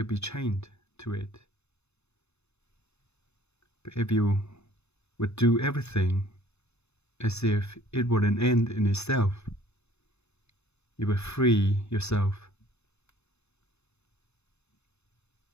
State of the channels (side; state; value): right; late; 0.81 ms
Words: be chained to it. But if you would do everything as if it were an end in itself, you will free yourself.